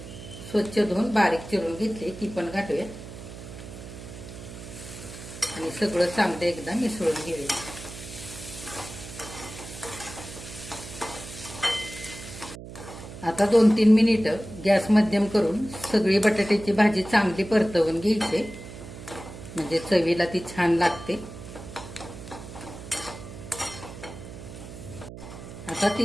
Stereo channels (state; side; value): noise; right; hum, 13 dB below the sound